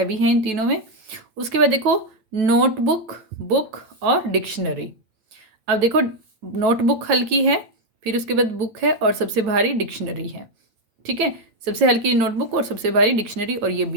है इन तीनों में। उसके बाद देखो नोटबुक, बुक और डिक्शनरी। अब देखो नोटबुक हल्की है, फिर उसके बाद बुक है और सबसे भारी डिक्शनरी है। ठीक है, सबसे हल्की नोटबुक और सबसे भारी डिक्शनरी, और ये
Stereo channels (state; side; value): late; left; 8.8 ms